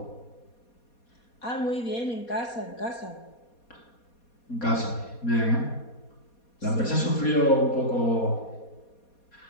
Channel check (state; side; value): late; right; 4.2 ms